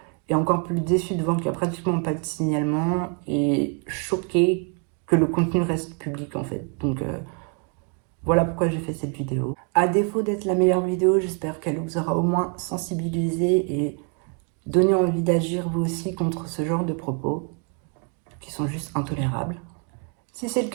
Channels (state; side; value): quieter; left; 38.8 dB